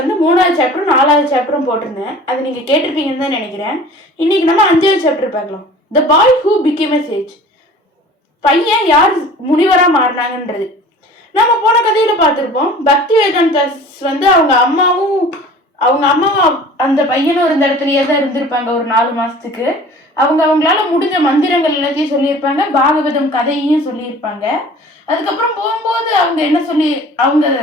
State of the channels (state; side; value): normal; both; correlation 0.44